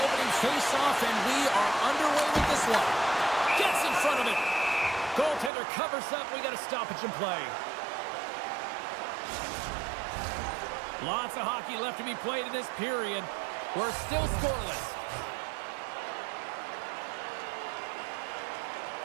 face-off, and we are underway with this one. Gets in front of it. Goaltender covers up. We got a stoppage in play. Lots of hockey left to be played in this period. We're still scoreless.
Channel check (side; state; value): left; drops out; at 5.5 s